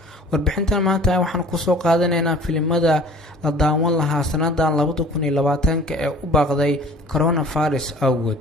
warbixintan maanta waxaan kusoo qaadanaynaa filimada la daawan lahaa sanadan 2020 ee u baaqday coronavirus awgood.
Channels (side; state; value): both; normal; correlation 0.48